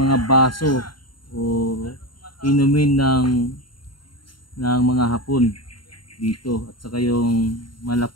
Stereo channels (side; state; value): right; late; 0.72 ms